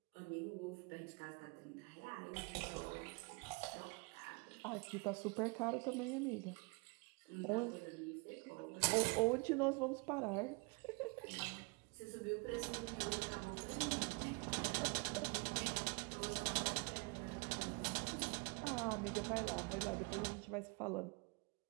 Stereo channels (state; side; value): quieter; left; 30.1 dB